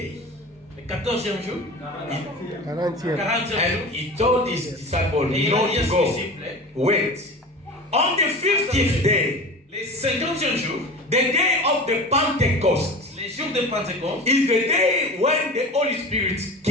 le 14e jour, 40e. 40e jour, and he told his disciples et il a not dit à to ses go. disciples, Wait. On the 50th day, le 50e jour, the day of the Pentecost, les jours de Pentecôte, is the day when the Holy Spirit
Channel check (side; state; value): both; normal; correlation 0.33